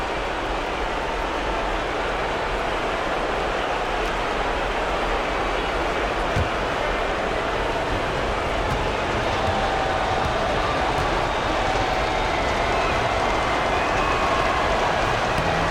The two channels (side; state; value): both; identical; correlation 1.00